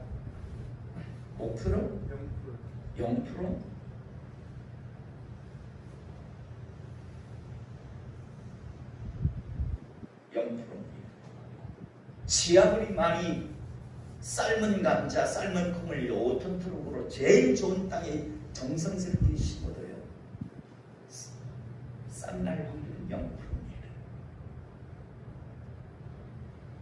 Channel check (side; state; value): both; identical; correlation 1.00